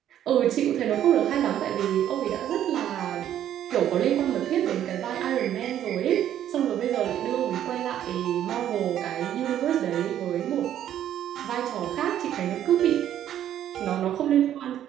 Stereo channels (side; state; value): left; quieter; 11.0 dB